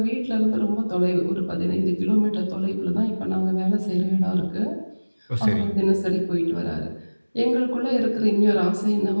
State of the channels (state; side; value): inverted; both; correlation -1.00